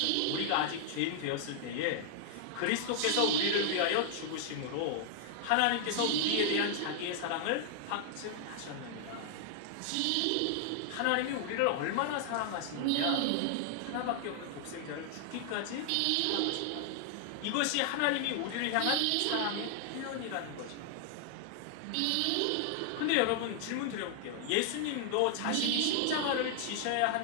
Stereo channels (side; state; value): both; different; correlation 0.00